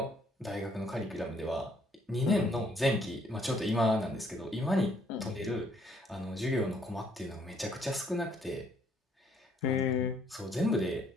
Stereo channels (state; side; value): normal; both; correlation 0.66